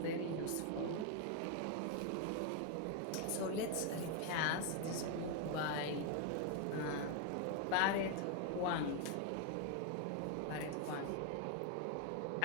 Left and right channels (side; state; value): both; different; correlation 0.01